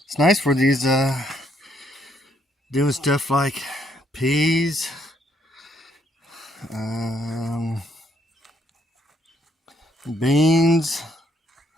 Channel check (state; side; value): normal; both; correlation 0.71